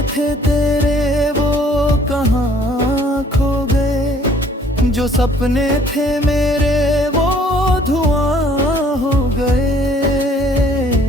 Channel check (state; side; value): normal; both; correlation 0.58